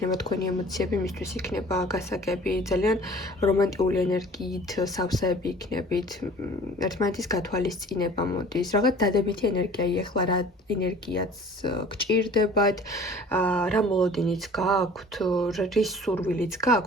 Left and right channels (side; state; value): both; normal; correlation 0.47